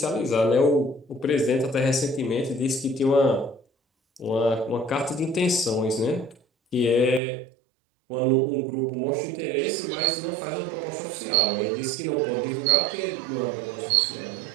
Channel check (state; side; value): drops out; left; at 7.2 s